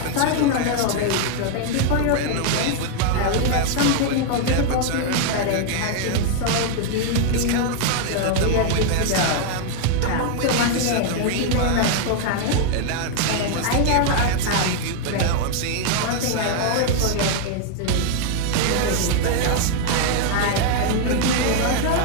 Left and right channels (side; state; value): both; different; correlation 0.00